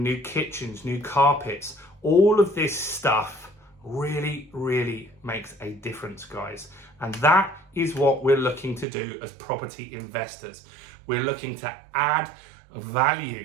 new kitchens, new carpets. All of this stuff really, really makes a difference, guys. And that is what we're looking to do as property investors. We're looking to add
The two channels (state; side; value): drops out; left; at 8.8 s